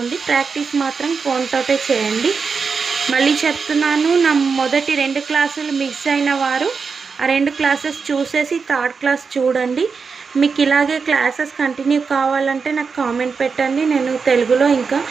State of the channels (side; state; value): left; quieter; 5.3 dB